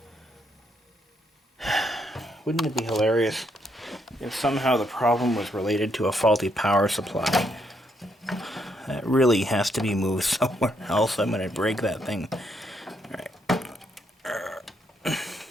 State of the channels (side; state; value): both; normal; correlation 0.75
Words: Wouldn't it be hilarious if somehow the problem was related to a faulty power supply? That really has to be moved somewhere else. I'm going to break that thing. Alright. Try